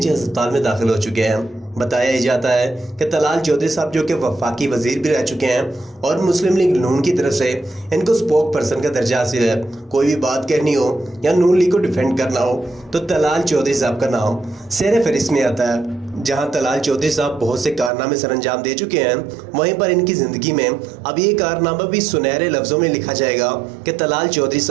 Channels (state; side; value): drops out; left; at 17.9 s